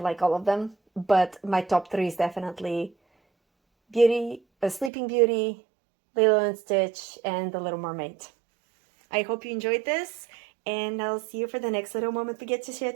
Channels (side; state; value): left; drops out; at 4.9 s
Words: all of them, but my top 3 is definitely Sleeping Beauty, Lilo and Stitch, and The Little Mermaid. I hope you enjoyed this, and I'll see you for the next little moment we get to share